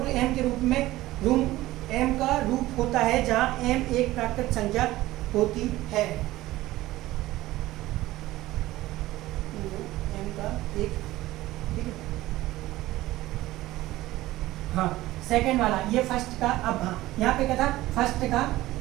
m के रूप में m का रूप होता है जहां m एक प्राकृतिक संख्या होती है। m का एक, ठीक है, हाँ सेकंड वाला ये फर्स्ट का, अब हाँ यहाँ पे क्या था, फर्स्ट का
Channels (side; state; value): left; quieter; 16.9 dB